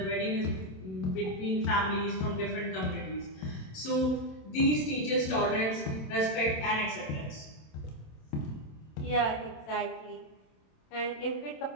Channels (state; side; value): late; right; 27 ms